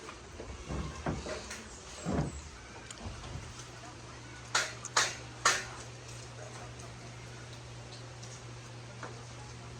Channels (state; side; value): identical; both; correlation 1.00